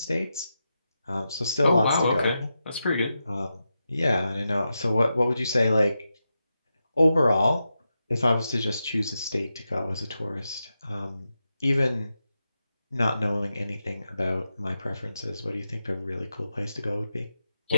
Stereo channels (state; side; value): inverted; both; correlation -0.89